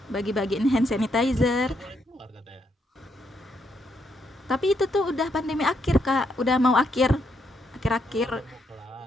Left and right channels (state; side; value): normal; both; correlation 0.76